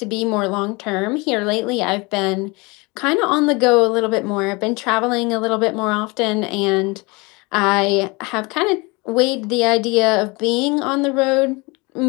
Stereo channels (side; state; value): right; quieter; 26.5 dB